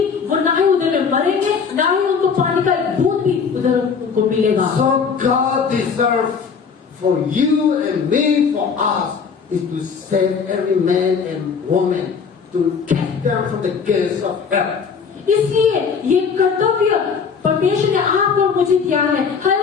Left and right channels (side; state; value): right; quieter; 5.9 dB